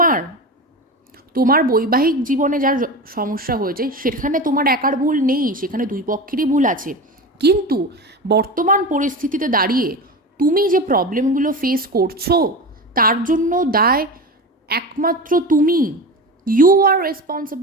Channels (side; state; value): both; normal; correlation 0.26